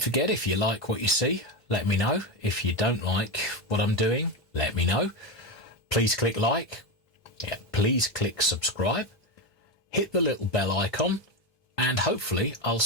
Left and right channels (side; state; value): both; normal; correlation 0.14